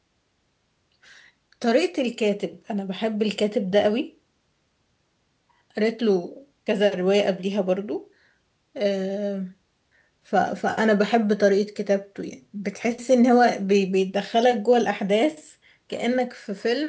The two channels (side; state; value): both; identical; correlation 1.00